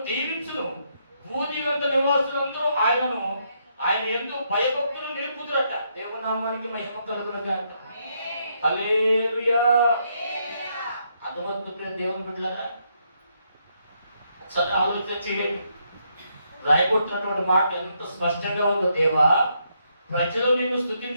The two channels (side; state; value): both; inverted; correlation -0.76